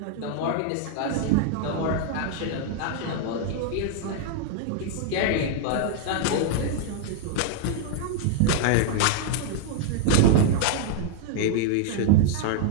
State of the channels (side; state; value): both; different; correlation -0.01